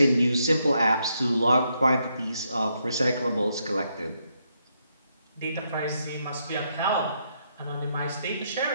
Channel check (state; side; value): inverted; both; correlation -0.78